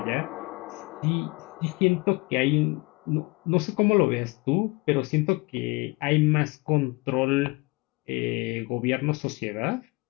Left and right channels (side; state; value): right; quieter; 25.4 dB